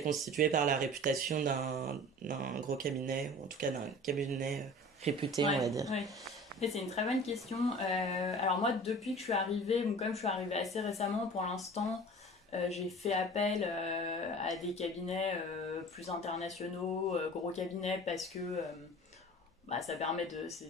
constituée par la réputation d'un gros cabinet, ou en tout cas d'un cabinet réputé, on Ouais, va dire. ouais. Et c'est une très bonne question. Alors moi, depuis que je suis arrivée, bon, comme je suis arrivée assez récemment, pour l'instant, j'ai fait appel à des cabinets plus internationaux, gros cabinets, parce que ça permet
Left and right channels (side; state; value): both; normal; correlation 0.41